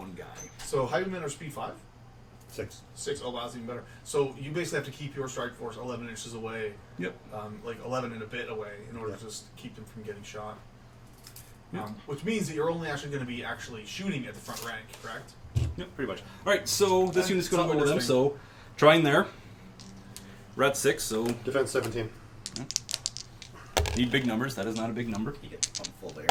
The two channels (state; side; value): identical; both; correlation 1.00